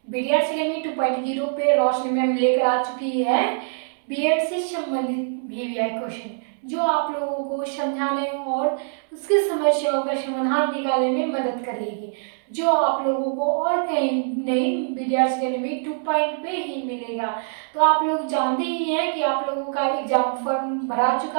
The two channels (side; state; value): left; silent; 63 dB below the other